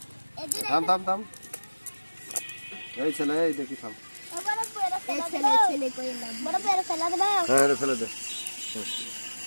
থাম থাম থাম এই ছেলে এই দেখি থাম ছেলে কইলাম বড় পেরে ফেলা দেব হ্যাঁ রে ফেলে দে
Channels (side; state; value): both; inverted; correlation -1.00